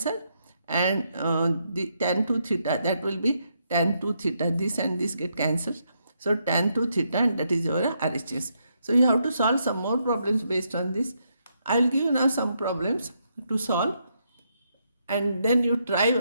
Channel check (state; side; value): inverted; both; correlation -0.78